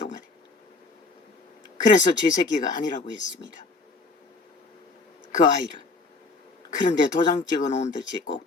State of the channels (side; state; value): right; quieter; 3.6 dB